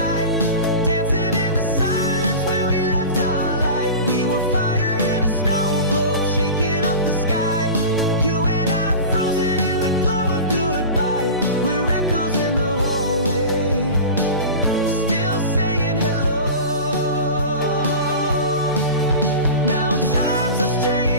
dancing in the silence where we left our light. We were fire in a snow globe, shaking up the sky. You and I frozen in the glow of goodbye. We're echoes in the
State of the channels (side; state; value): both; inverted; correlation -0.32